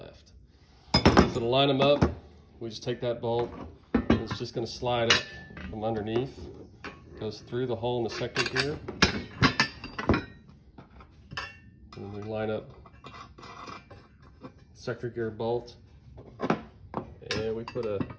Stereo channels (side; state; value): both; identical; correlation 1.00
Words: So to line them up, we just take that bolt, and it's just going to slide up from underneath. Goes through the hole in the sector gear. And we line up sector gear bolt. And we put